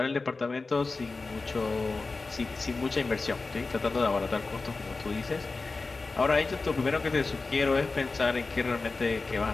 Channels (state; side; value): quieter; right; 3.8 dB